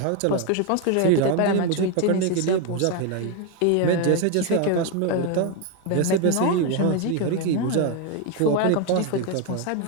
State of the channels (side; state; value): both; different; correlation 0.01